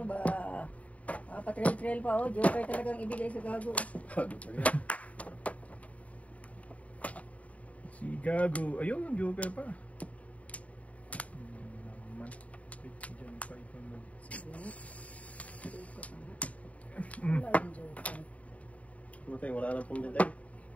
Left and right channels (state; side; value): late; right; 0.068 ms